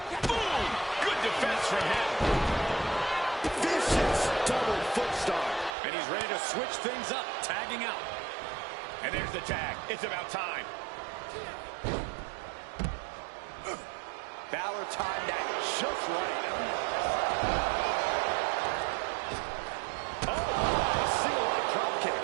Boom! Good defense from him. Vicious double foot stomp. And he's ready to switch things up, tagging out. And there's the tag. It's about time. Balor timed that just right. Oh, single leg drop kick.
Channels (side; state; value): left; drops out; at 5.8 s